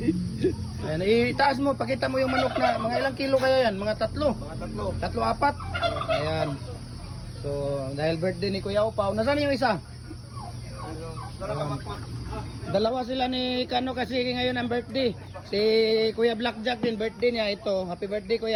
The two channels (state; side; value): identical; both; correlation 1.00